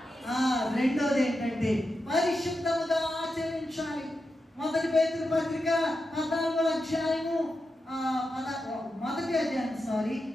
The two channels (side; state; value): both; normal; correlation 0.89